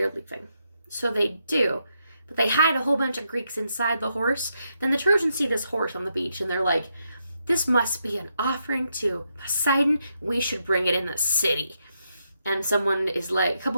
leaving. So they do. But they hide a whole bunch of Greeks inside the horse. Then the Trojans see this horse on the beach, and they're like, this must be an offering to Poseidon. We should bring it in the city. And someone is like, a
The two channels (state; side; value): inverted; both; correlation -0.81